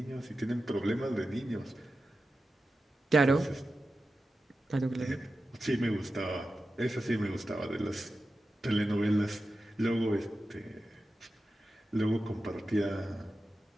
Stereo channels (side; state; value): both; normal; correlation 0.93